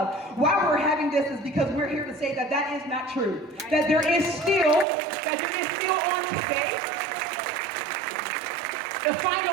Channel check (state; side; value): drops out; left; at 4.9 s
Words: Why we're having this is because we're here to say that that is not true. That there is still on today the